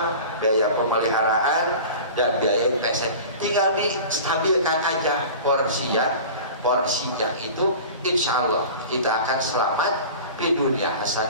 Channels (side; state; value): both; inverted; correlation -0.37